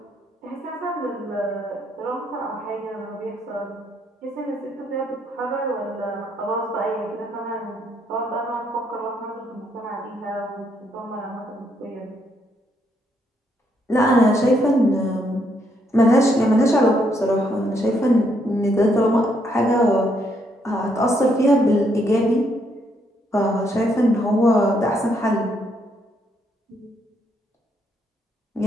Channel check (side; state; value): both; normal; correlation 0.74